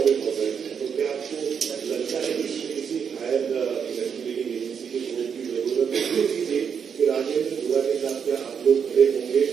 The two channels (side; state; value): left; quieter; 7.1 dB